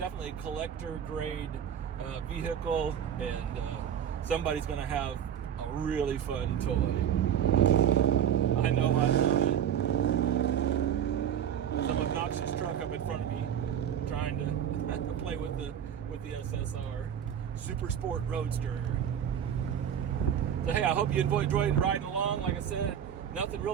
a collector grade vehicle, and somebody's going to have a really fun toy. I know I love it. Some obnoxious truck up in front of me trying to play with the SSR Super Sport Roadster. So hey, I hope you enjoyed riding along. Like I said, nothing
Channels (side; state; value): left; quieter; 9.2 dB